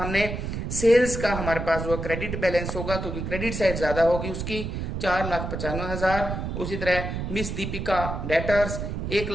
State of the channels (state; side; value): noise; right; rumble, 4 dB below the sound